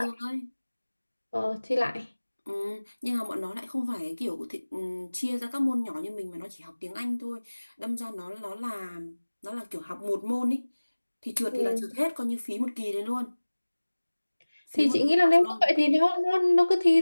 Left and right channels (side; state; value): both; inverted; correlation -1.00